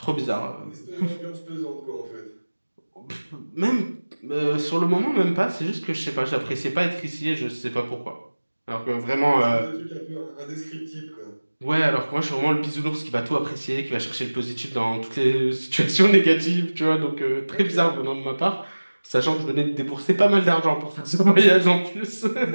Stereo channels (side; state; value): both; inverted; correlation -1.00